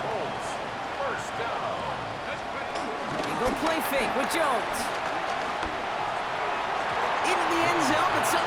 Colts first down. They go play fake with Jones. Into the end zone, but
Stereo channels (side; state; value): both; identical; correlation 1.00